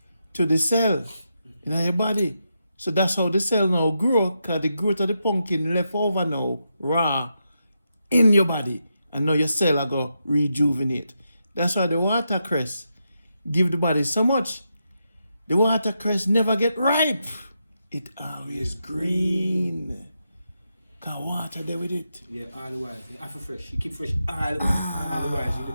to the cell in your body. So that's how the cell now grow, because the growth of the pumpkin left over now, raw, in your body. And now your cell are going to rejuvenate. That's why the watercress give the body so much. The watercress never get ripe. It always green. Cause water there with it. Yeah, all the while. You have to fresh. You keep fresh all the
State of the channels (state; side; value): inverted; both; correlation -0.85